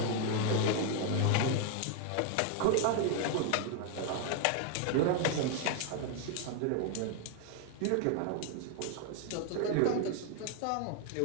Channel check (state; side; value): different; both; correlation 0.00